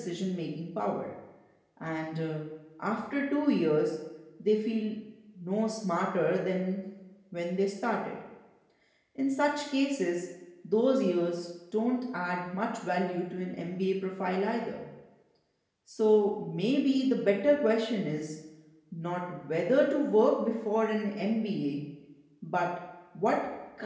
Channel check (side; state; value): both; identical; correlation 1.00